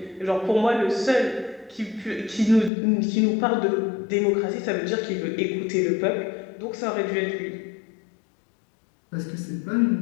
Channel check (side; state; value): right; drops out; at 2.7 s